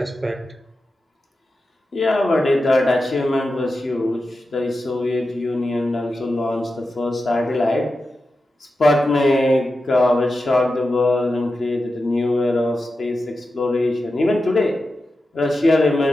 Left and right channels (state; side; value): normal; both; correlation 0.91